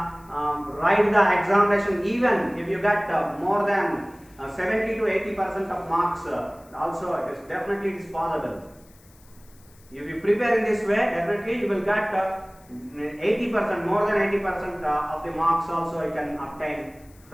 the examination even if you get more than 70 to 80% of marks. Also, it is definitely possible. If you prepare in this way, definitely you will get 80%, more than 80% of the marks also you can obtain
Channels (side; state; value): left; noise; hiss, 28 dB below the sound